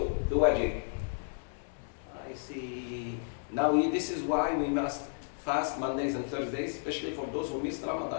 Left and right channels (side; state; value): right; silent; digital silence